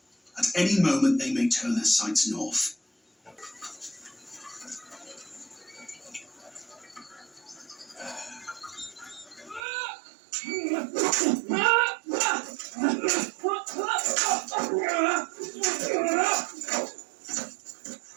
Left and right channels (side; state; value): left; drops out; at 9.6 s